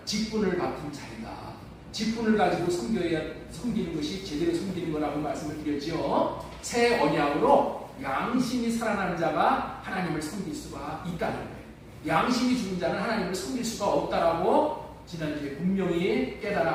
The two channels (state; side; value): identical; both; correlation 1.00